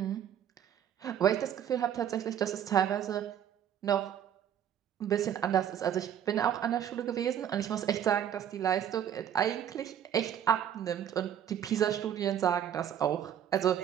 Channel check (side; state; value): left; quieter; 9.6 dB